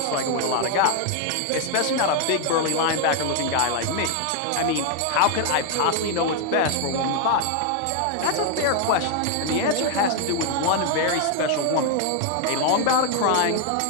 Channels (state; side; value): different; both; correlation 0.00